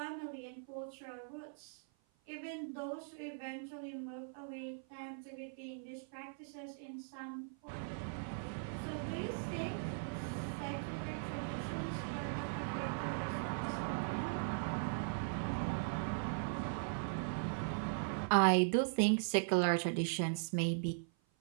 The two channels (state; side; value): silent; left; 51 dB below the other